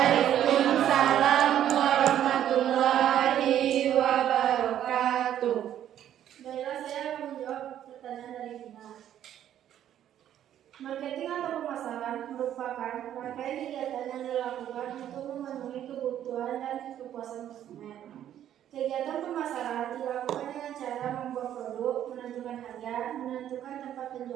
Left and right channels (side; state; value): left; quieter; 10.9 dB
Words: warahmatullahi wabarakatuh. Baiklah, saya akan menjawab pertanyaan dari Bina. Marketing atau pemasaran merupakan rangkaian kegiatan yang dilakukan untuk memenuhi kebutuhan dan kepuasan konsumen. Kegiatan pemasaran dilakukan dengan cara membuat produk, menentukan harga, menentukan tempat